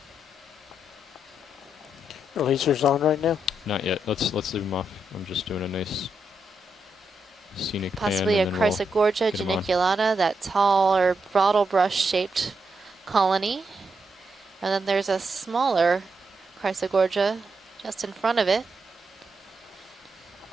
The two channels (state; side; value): normal; both; correlation 0.82